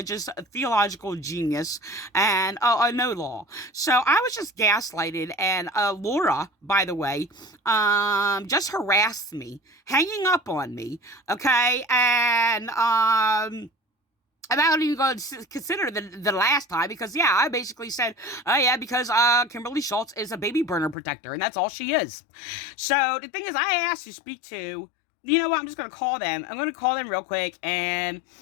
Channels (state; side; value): drops out; right; at 21.0 s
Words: theological genius and I know law, so I was just gaslighted. And Laura, by the way, just harassed me, hanging up on me. Okay, and I'm not even going to consider the last time because, yeah, I basically said, oh, yeah, because Kimberly Schultz is a baby burner protector, and that's all she is. So the thing is, I asked to speak to, you know what, I'm just going to call them. I'm going to call them real quick, and